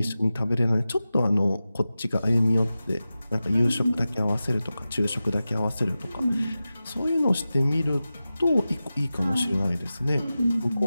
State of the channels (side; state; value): both; inverted; correlation -0.94